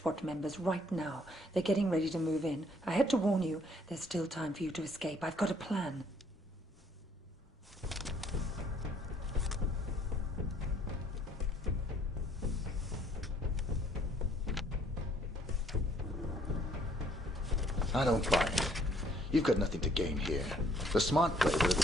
members right now. They're getting ready to move in. I had to warn you. There's still time for you to escape. I've got a plan. I don't buy it. You've got nothing to gain here. The smart play would have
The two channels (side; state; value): both; normal; correlation 0.63